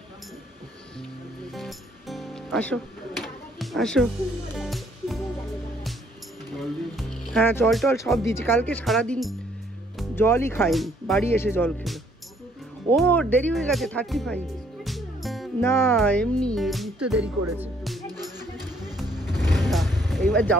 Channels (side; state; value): both; normal; correlation 0.65